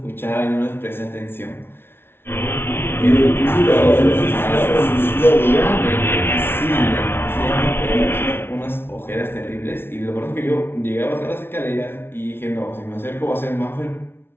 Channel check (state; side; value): late; right; 0.11 ms